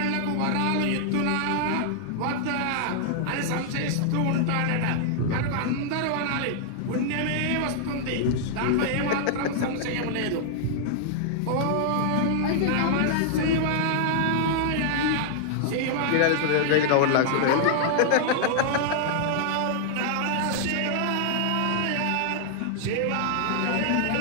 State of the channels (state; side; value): different; both; correlation -0.01